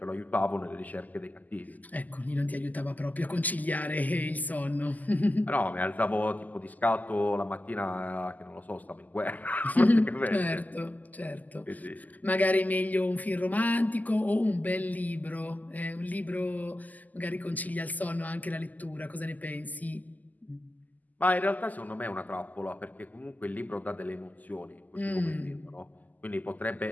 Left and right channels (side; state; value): right; late; 0.081 ms